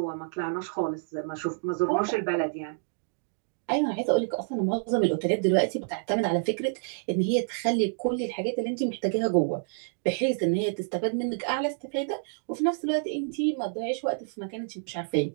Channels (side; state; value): left; silent; digital silence